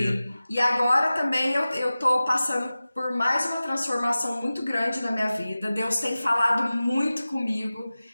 E agora também eu tô passando por mais uma transformação muito grande na minha vida. Deus tem falado muito comigo,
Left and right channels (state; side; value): inverted; both; correlation -0.96